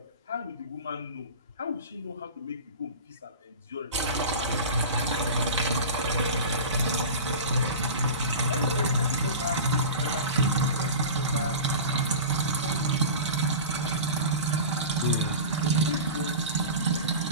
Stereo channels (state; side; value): inverted; both; correlation -0.31